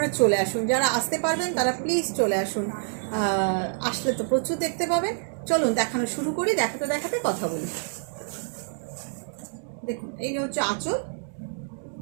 চলে আসুন, যারা আসতে পারবেন তারা প্লিজ চলে আসুন। আসলে তো প্রচুর দেখতে পাবেন। চলুন দেখানো শুরু করি, দেখাতে দেখাতে কথা বলি। দেখুন, এই হচ্ছে আঁচল,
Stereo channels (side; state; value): left; silent; digital silence